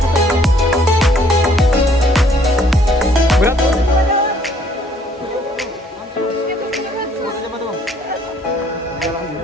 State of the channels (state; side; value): normal; both; correlation 0.62